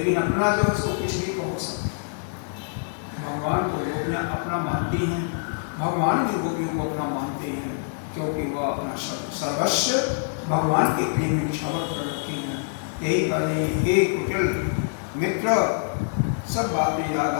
अपना जो उसको कुछ भी कहो सकते। भगवान को गोपियाँ अपना मानती हैं, भगवान भी गोपियों को अपना मानते हैं, क्योंकि वह अपना सर्वस्व भगवान के प्रेम में निछावर कर रखे हैं। यही कहने हे कुटिल मित्र, सब बातें याद आ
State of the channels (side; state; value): right; silent; digital silence